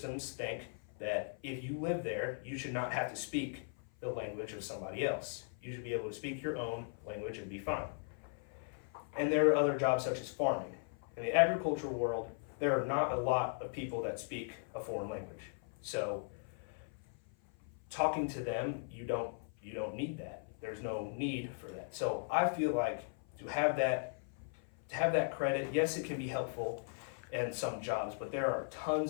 think that if you live there, you should not have to speak the language of somebody else. You should be able to speak your own language and be fine. And there are other jobs such as farming. In the agricultural world, there are not a lot of people that speak a foreign language. So talking to them, you don't need that. There's no need for that. So I feel like to have that credit, yes, it can be helpful in some jobs, but there are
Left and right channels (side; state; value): right; silent; 52 dB below the other